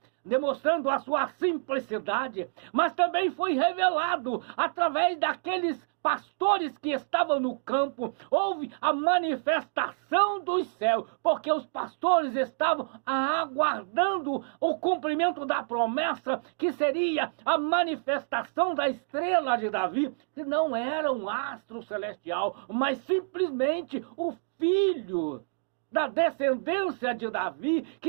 demonstrando a sua simplicidade, mas também foi revelado através daqueles pastores que estavam no campo. Houve a manifestação dos céus, porque os pastores estavam aguardando o cumprimento da promessa, que seria a manifestação da estrela de Davi, que não era um astro celestial, mas simplesmente o filho da descendência de Davi,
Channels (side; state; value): left; silent; digital silence